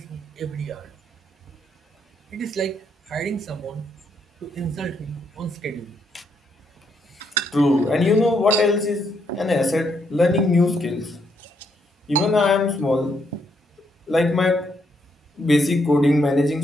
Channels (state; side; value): normal; both; correlation 0.76